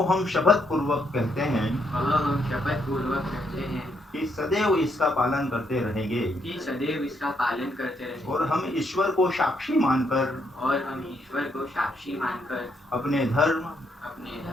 हम शपथ पूर्वक कहते हैं कि सदैव इसका पालन करते रहेंगे और हम ईश्वर को साक्षी मानकर अपने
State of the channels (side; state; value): both; normal; correlation 0.75